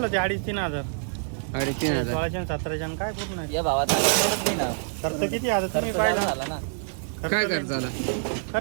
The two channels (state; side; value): silent; left; 61 dB below the other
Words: ते 2,500-3,000. 3,500. 16,000-17,000 काय होत नाही. खर्च किती आता तुम्ही पाहिलं? काय खर्च आला?